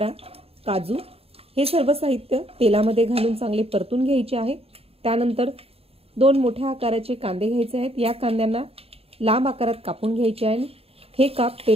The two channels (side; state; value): left; late; 0.28 ms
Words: काजू, हे सर्व साहित्य तेलामध्ये घालून चांगले परतून घ्यायचे आहे। त्यानंतर 2 मोठ्या आकाराचे कांदे घ्यायचे आहेत। या कांद्यांना लांब आकारात कापून घ्यायचे आहे। हे काप